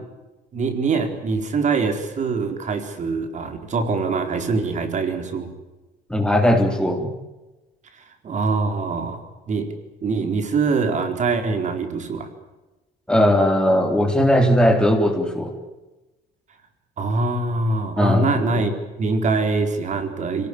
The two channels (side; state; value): both; normal; correlation 0.68